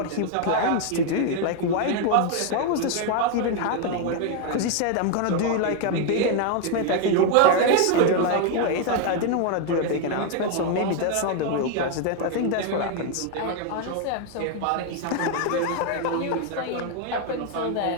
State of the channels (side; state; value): both; different; correlation 0.01